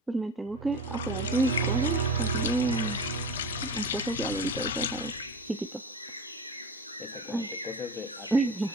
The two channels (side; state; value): both; normal; correlation 0.32